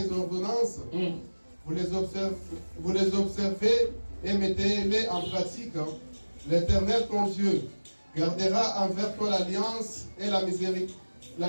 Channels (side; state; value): both; inverted; correlation -1.00